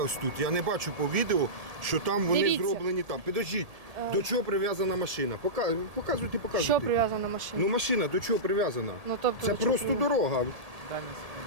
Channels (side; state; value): left; late; 1.7 ms